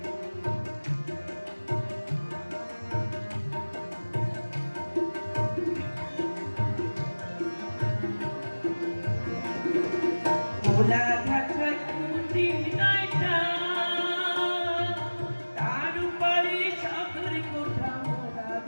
ভোলা ঘাটায় কুটি নাইটা, তার উপরে চাদর কোঠা, ভোলা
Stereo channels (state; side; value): inverted; both; correlation -1.00